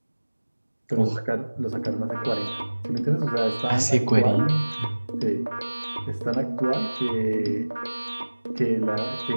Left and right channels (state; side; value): inverted; both; correlation -1.00